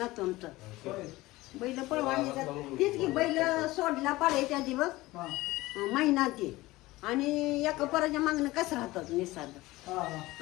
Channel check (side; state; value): right; quieter; 19.1 dB